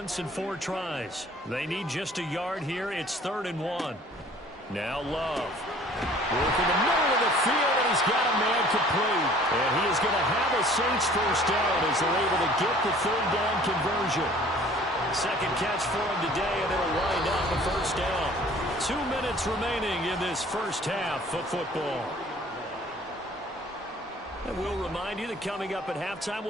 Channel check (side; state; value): both; normal; correlation 0.52